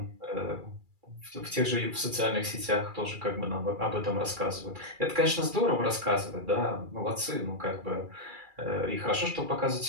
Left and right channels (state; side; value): late; left; 2.3 ms